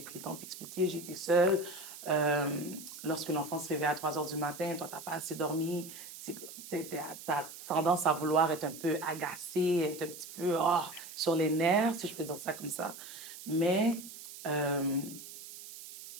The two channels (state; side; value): noise; right; hiss, 13 dB below the sound